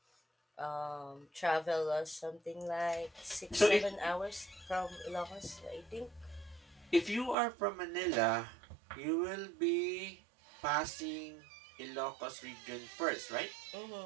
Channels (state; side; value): drops out; left; at 7.4 s